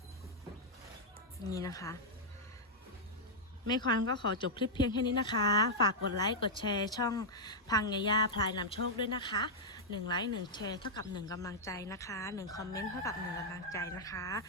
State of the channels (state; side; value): normal; both; correlation -0.06